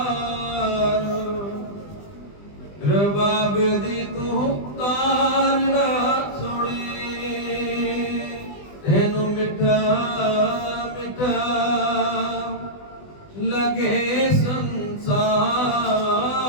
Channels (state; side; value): late; right; 20 ms